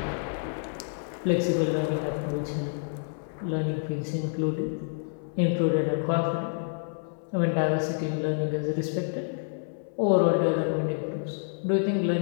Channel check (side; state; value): right; silent; 59 dB below the other